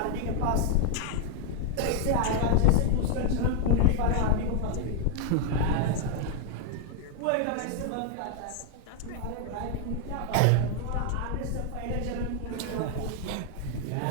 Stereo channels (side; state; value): both; different; correlation 0.00